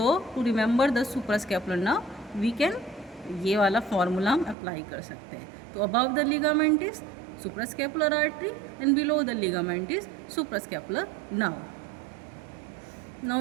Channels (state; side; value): drops out; left; at 4.5 s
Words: to remember the suprascapular nerve we can ये वाला फॉर्मूला हम अप्लाई कर सकते हैं। तो above the ligament is suprascapular artery and below the ligament is suprascapular nerve. Now